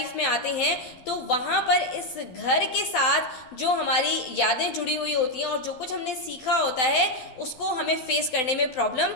में आते हैं, तो वहाँ पर इस घर के साथ जो हमारी यादें जुड़ी हुई होती हैं और जो कुछ हमने सीखा होता है उसको हमें फेस करने में प्रॉब्लम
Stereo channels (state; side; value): late; right; 12 ms